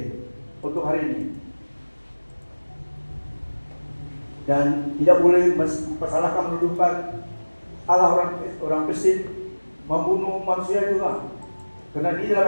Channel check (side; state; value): both; inverted; correlation -1.00